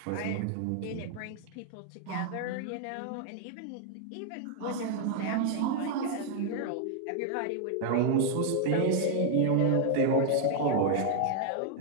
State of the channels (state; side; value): different; both; correlation 0.00